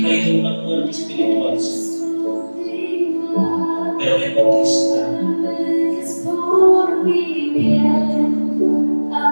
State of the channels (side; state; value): both; inverted; correlation -1.00